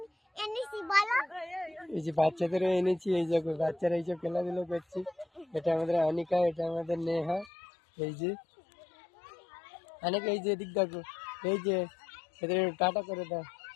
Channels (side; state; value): right; drops out; at 7.5 s